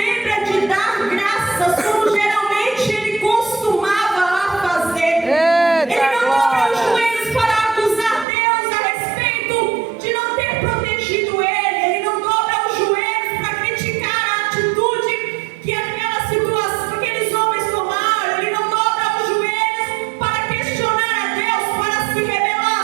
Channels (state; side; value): drops out; left; at 8.2 s